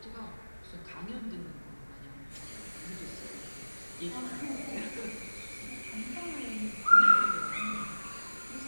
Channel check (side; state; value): both; inverted; correlation -1.00